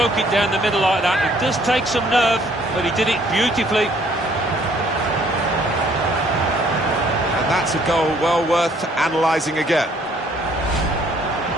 it down the middle like that, it does take some nerve, but he did it beautifully. That's a goal well worth analysing again.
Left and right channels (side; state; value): both; normal; correlation 0.62